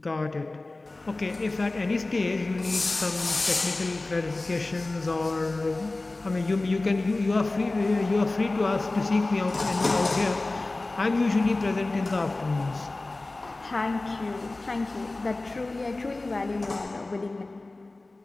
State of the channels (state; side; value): quieter; right; 3.1 dB